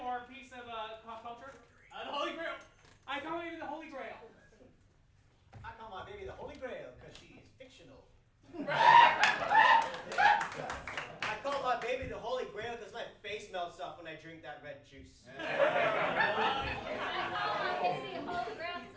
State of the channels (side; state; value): both; identical; correlation 1.00